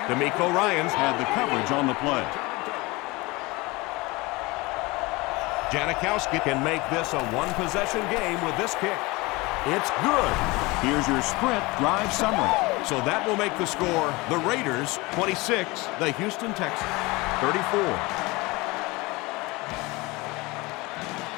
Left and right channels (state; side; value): quieter; right; 23.4 dB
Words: D'Amico Ryans had the coverage on the play. Janikowski can make this a one-possession game with this kick. It's good. Here's your sprint drive summary. So that will make the score the Raiders 26, the Houston Texans 34.